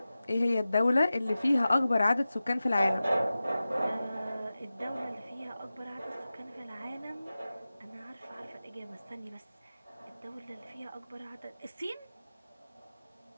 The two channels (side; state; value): both; inverted; correlation -0.95